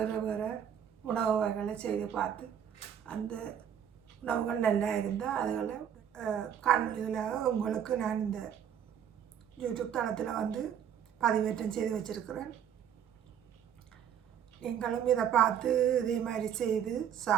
வேறு உணவு வகைகளை செய்து பார்த்து அந்த உணவுகள் நல்லா இருந்தால் அதுகளை காணொலிகளாக உங்களுக்கு நான் இந்த யூடியூப் தளத்தில் பதிவேற்றம் செய்து வச்சுருக்கிறேன். நீங்களும் இதை பார்த்து இதே மாதிரி செய்து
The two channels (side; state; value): left; quieter; 8.9 dB